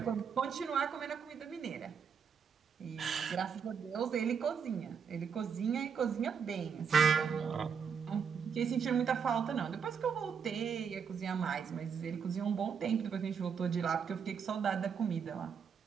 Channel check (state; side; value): quieter; left; 6.7 dB